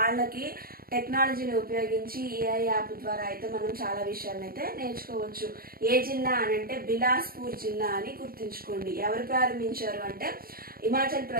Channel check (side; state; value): left; late; 0.43 ms